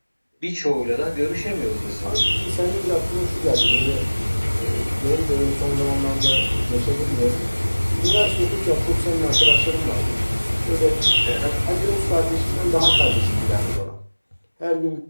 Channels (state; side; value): inverted; both; correlation -1.00